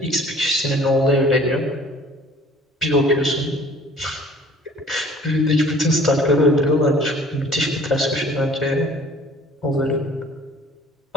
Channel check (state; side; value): normal; both; correlation 0.50